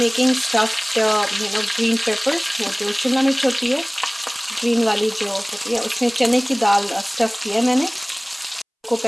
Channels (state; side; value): identical; both; correlation 1.00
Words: stuffed green peppers. वो जो शिमला मिर्च होती है ग्रीन वाली जो होती है, उसमें चने की दाल स्टफ़ किया है मैंने. को